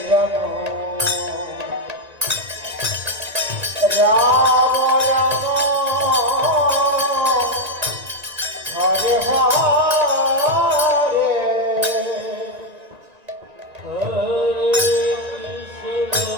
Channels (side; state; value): left; late; 1.8 ms